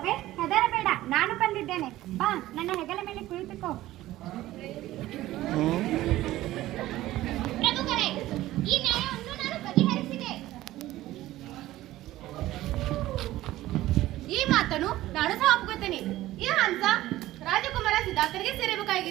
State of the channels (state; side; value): quieter; left; 15.7 dB